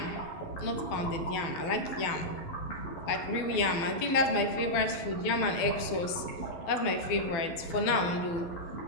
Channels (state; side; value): late; right; 12 ms